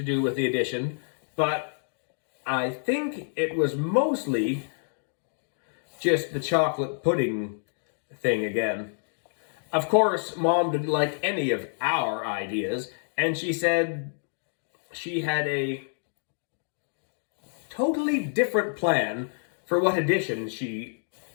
do with the addition, but I think it was mostly just the chocolate pudding thing again. Of course, Mom didn't like any of our ideas, and she said she had a totally different plan for what our addition should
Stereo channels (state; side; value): silent; right; digital silence